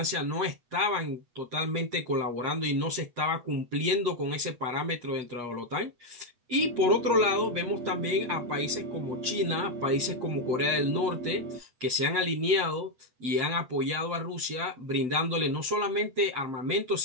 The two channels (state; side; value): late; left; 8.3 ms